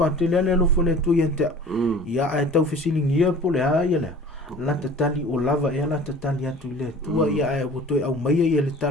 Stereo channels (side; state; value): both; normal; correlation 0.44